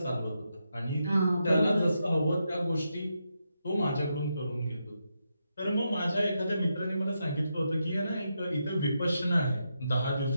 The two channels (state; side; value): inverted; both; correlation -0.84